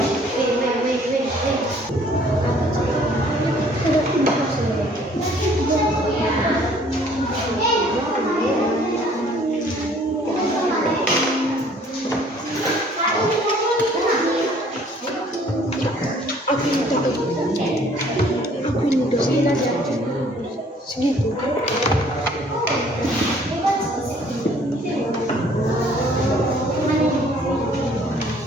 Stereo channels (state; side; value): normal; both; correlation 0.58